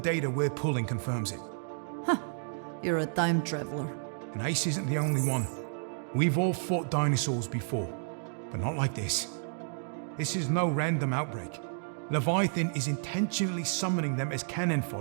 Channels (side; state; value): left; silent; digital silence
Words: we're pulling confirms it. You're a time traveler. And Ace isn't the only one. We've all fought dinosaurs before, but not like this. This is no random outbreak. Leviathan is intentionally summoning them as cannon